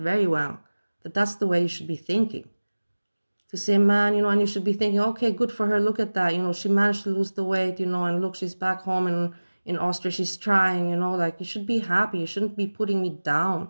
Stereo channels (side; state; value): both; inverted; correlation -1.00